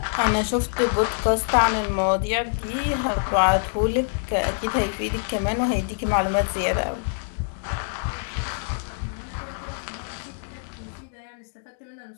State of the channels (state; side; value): silent; right; digital silence